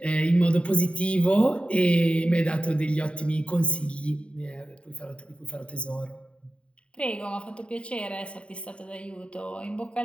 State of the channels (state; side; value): late; right; 0.059 ms